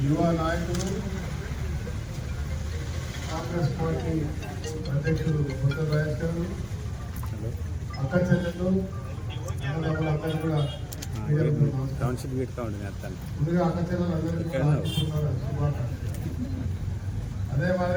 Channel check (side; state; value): both; identical; correlation 1.00